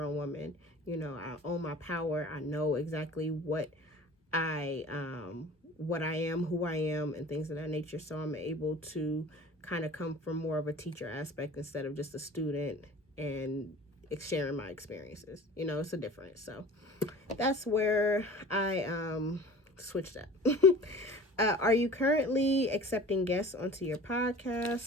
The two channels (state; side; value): normal; both; correlation 0.42